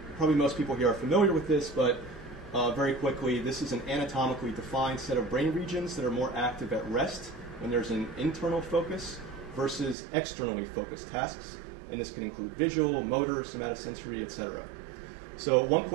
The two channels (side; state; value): left; drops out; at 10.0 s